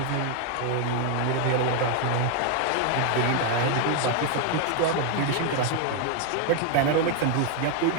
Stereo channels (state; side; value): different; both; correlation 0.01